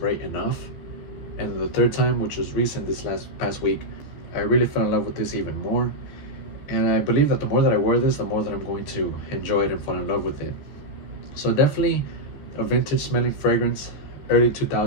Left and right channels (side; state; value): right; late; 14 ms